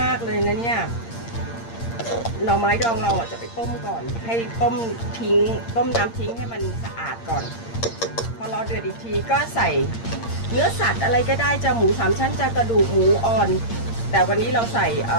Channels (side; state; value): right; late; 8.7 ms